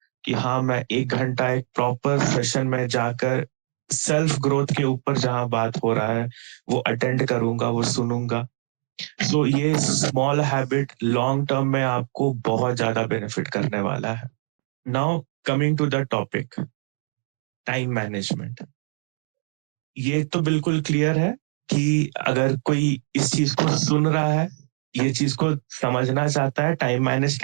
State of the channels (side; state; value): left; silent; digital silence